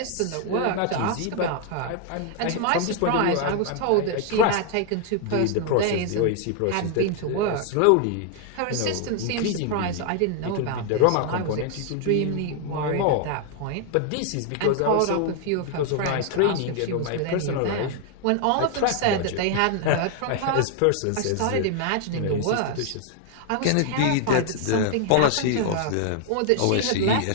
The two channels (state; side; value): different; both; correlation 0.00